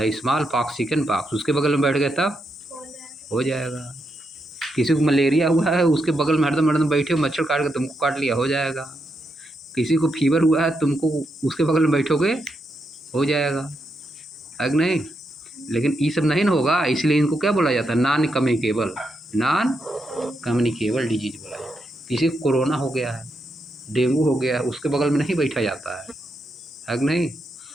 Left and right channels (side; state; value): both; normal; correlation 0.83